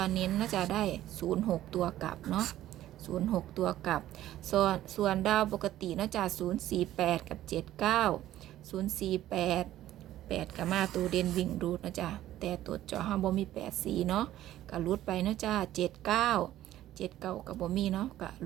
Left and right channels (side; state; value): left; quieter; 13.6 dB